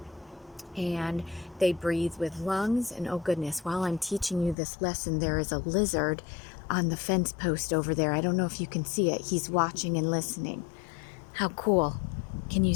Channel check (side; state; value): right; drops out; at 4.5 s